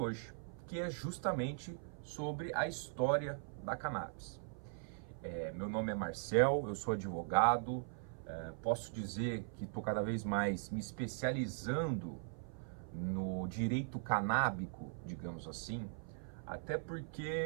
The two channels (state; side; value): silent; left; 51 dB below the other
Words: que é justamente sobre a história da cannabis. Meu nome é Marcel, eu sou advogado, posso dizer que estou cada vez mais me especializando no direito canábico, digamos assim, até